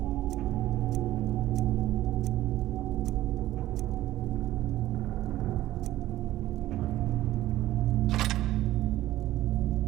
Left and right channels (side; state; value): left; quieter; 14.8 dB